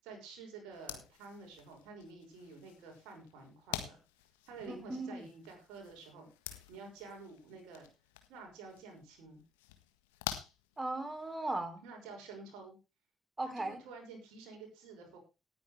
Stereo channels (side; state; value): both; normal; correlation 0.57